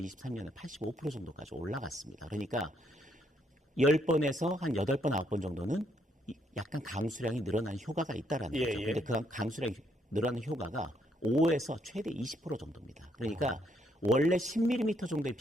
85% 정도까지 올라갔습니다. 그러니까 10번에서 한 8번, 9번 정도는 약간 강수량이 늘어나는 효과가 있다라는 예, 거죠. 예. 근데 그 강수량이 늘어나는 효과가 5에서 최대 20% 정도입니다. 그러니까 원래 10mm 정도의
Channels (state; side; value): normal; both; correlation 0.73